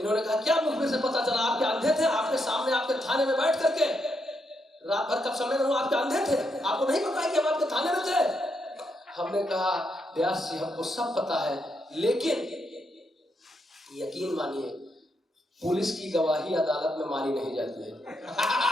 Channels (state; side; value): normal; both; correlation 0.80